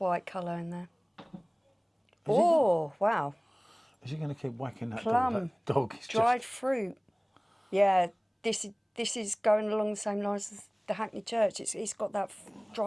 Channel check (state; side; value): identical; both; correlation 1.00